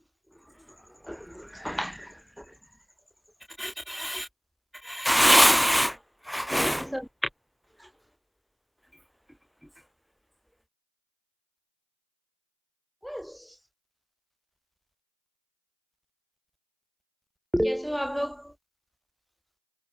सब कैसे हो आप लोग?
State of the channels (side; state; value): both; identical; correlation 1.00